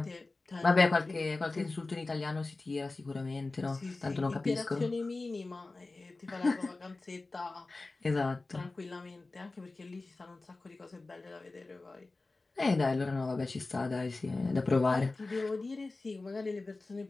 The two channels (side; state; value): right; quieter; 3.4 dB